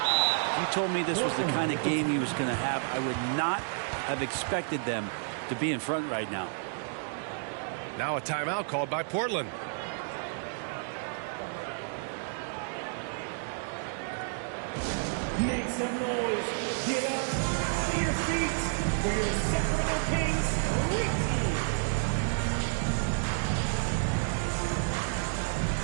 If you told me this was the kind of game he was going to have, I would not have expected them to be in front right now. Now a timeout called by Portland. Make some noise. Get up out of your seats for your Sacramento Kings Street Team.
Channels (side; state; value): left; silent; digital silence